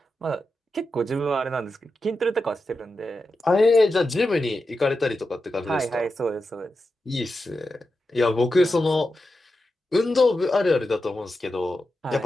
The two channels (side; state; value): both; normal; correlation 0.90